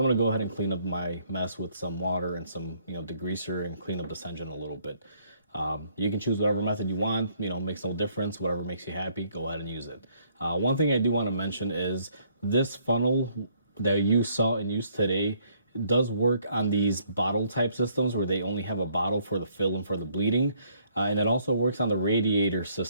going to go ahead and clean up my mess with some water and some, degreaser, and clean up this engine a little bit. You can choose whatever method you want, makes no difference. Whatever makes you happy, go ahead and use it. One thing I do want to mention is this funnel that you saw in use today does work on these bottle type systems where they only have a bottle for the fill and for the bleeding. And it also works on the radiator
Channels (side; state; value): both; inverted; correlation -0.66